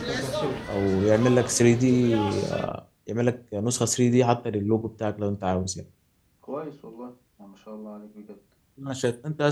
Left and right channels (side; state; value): both; identical; correlation 1.00